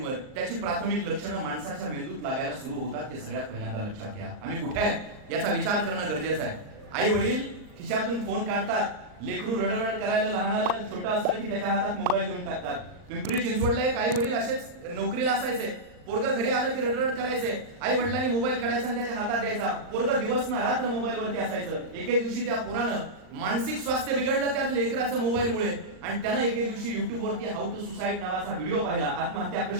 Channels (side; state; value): left; late; 39 ms